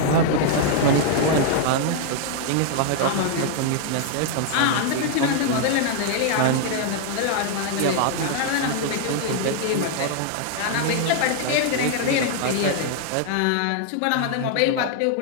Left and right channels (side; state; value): both; different; correlation 0.00